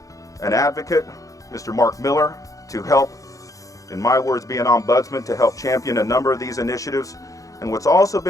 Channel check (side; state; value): right; late; 0.16 ms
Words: an advocate, Mr. Mark Miller, to help, in my words, be an ombudsman to help champion a number of these initiatives. And what's also